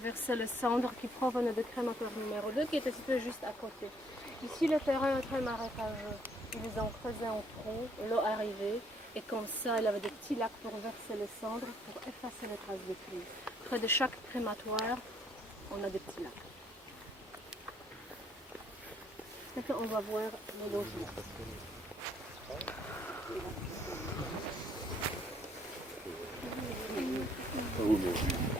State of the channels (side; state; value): both; normal; correlation 0.66